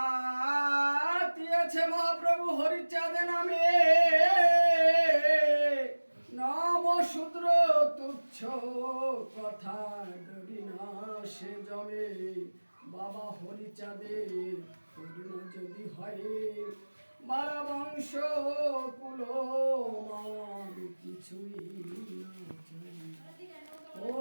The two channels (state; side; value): inverted; both; correlation -1.00